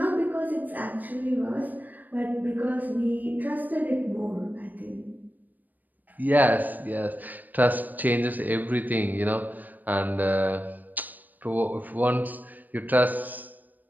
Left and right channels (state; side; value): late; left; 0.085 ms